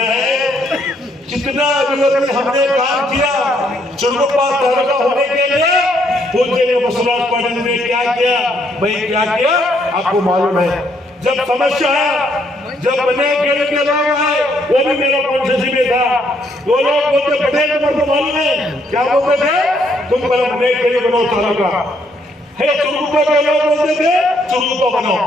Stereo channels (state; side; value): normal; both; correlation 0.71